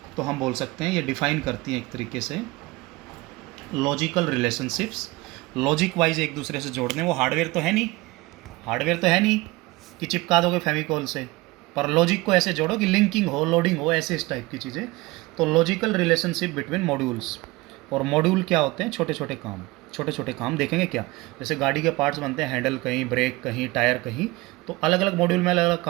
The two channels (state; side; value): quieter; left; 21.6 dB